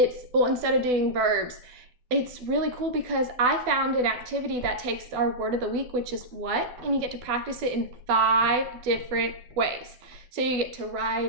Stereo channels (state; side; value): late; left; 12 ms